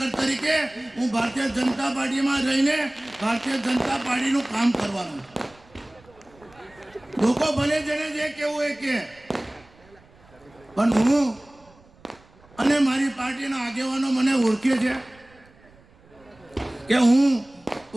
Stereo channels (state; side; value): noise; right; rumble, 28 dB below the sound